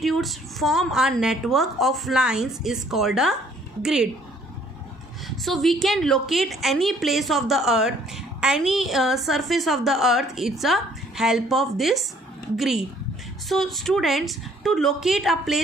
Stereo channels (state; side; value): normal; both; correlation 0.61